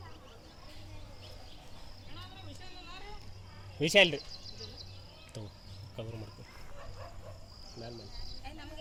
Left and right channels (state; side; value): identical; both; correlation 1.00